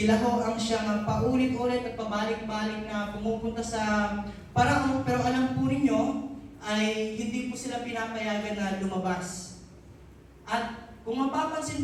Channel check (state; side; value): identical; both; correlation 1.00